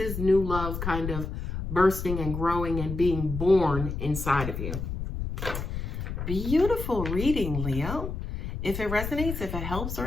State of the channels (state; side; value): noise; left; rumble, 5 dB below the sound